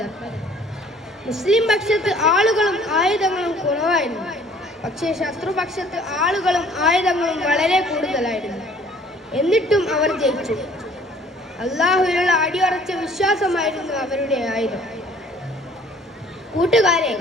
മുസ്ലിം പക്ഷത്ത് ആളുകളും ആയുധങ്ങളും കുറവായിരുന്നു, പക്ഷേ ശത്രുപക്ഷത്ത് ആളുകളും ആയുധങ്ങളും വളരെ കൂടുതലായിരുന്നു. എന്നിട്ടും അവർ ജയിച്ചു. അള്ളാഹുവിനുള്ള അടിയുറച്ച വിശ്വാസമായിരുന്നു അവരുടെ ആയുധം. കൂട്ടുകാരെ,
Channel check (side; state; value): both; normal; correlation 0.55